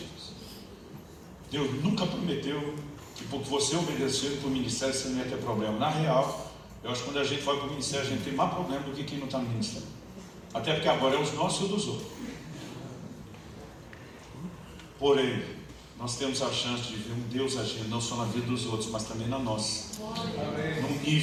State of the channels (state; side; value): identical; both; correlation 1.00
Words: Deus nunca prometeu que porque você obedeceu para o ministério você não ia ter problema. Na real, eu acho que quando a gente vai para o ministério a gente tem mais problema do que quem não está no ministério. Até porque agora é os nossos e dos outros. Porém, nós temos a chance de ver um Deus agindo não só na vida dos outros, mas também na nossa. Num